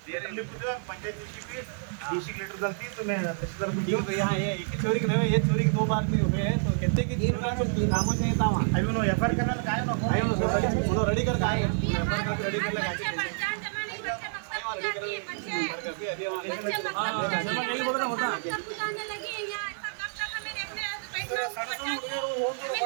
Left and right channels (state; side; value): silent; left; 59 dB below the other